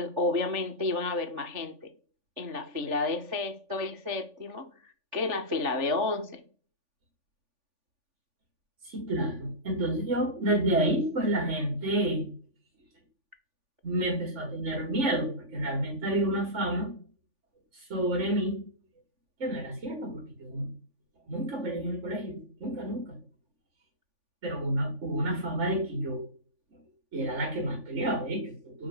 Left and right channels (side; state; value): left; late; 3.5 ms